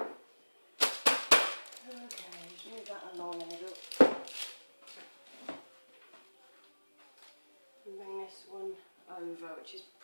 Okay, move that along a little. And bring this one over, which is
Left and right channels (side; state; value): both; inverted; correlation -1.00